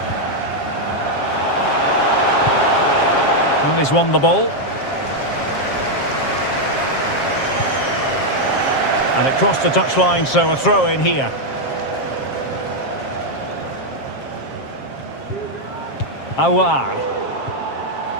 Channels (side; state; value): right; late; 7.4 ms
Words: Well, he's won the ball. And it crossed the touchline, so a throw in here. Aouar.